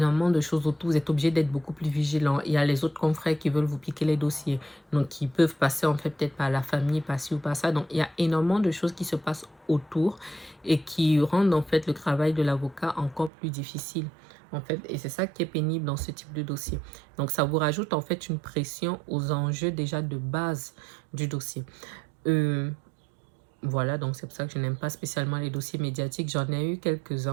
de choses autour, vous êtes obligé d'être beaucoup plus vigilant, il y a les autres confrères qui veulent vous piquer les dossiers, donc qui peuvent passer en fait peut-être par la famille, par ci ou par ça, donc il y a énormément de choses qui se passent autour et qui rendent en fait le travail de l'avocat encore plus difficile en fait, et c'est ça qui est pénible dans ce type de dossier. Donc ça vous rajoute en fait une pression aux enjeux déjà de base du dossier. Voilà, donc c'est pour ça que je n'aime pas spécialement les dossiers médiatiques. J'en ai eu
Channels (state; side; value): drops out; left; at 13.3 s